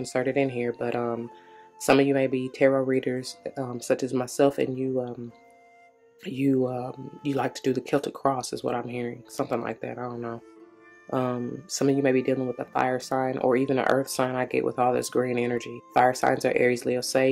it in here. But some of you may be tarot readers, such as myself, and you like to do the Celtic cross, is what I'm hearing. Something like that. I don't know. Some of you may be dealing with a fire sign or even an earth sign. I get with all this green energy. Fire signs are Aries, Leo,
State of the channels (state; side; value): identical; both; correlation 1.00